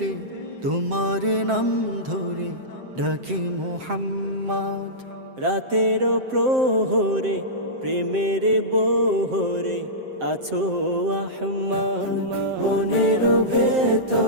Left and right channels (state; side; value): late; left; 7.7 ms